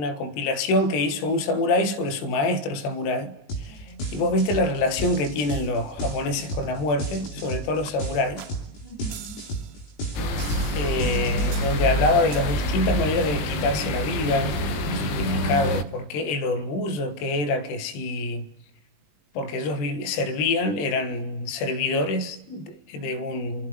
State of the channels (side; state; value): right; late; 20 ms